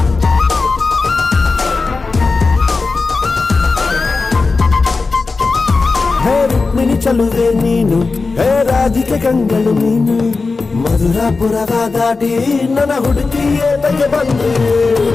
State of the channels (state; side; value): quieter; right; 4.1 dB